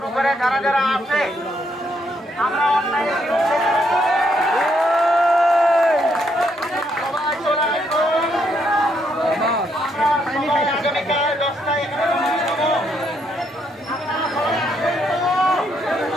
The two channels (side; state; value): both; normal; correlation 0.74